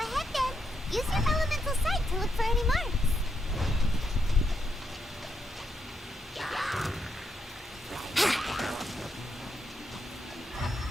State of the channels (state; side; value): normal; both; correlation 0.81